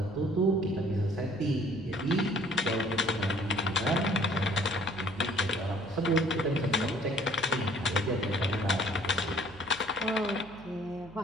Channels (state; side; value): noise; right; hum, 20 dB below the sound